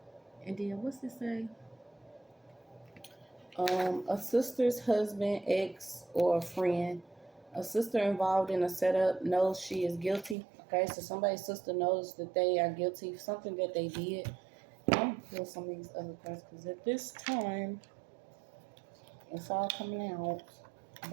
And then what's this say? A sister's husband, ex, or a friend. A sister involved in a setup knows she is guilty. Okay, so somebody's sister knows that they are guilty of something that they did. I'm gonna pull some of these other cards because at this time, it's all coming out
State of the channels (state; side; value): drops out; left; at 10.4 s